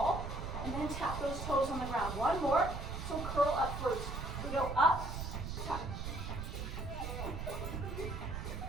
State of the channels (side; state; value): right; noise; rumble, 5 dB below the sound